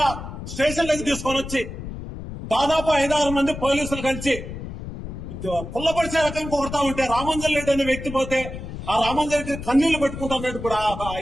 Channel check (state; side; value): noise; left; rumble, 9 dB below the sound